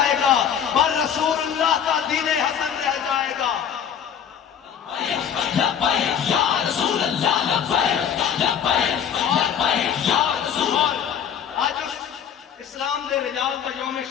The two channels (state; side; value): quieter; right; 8.4 dB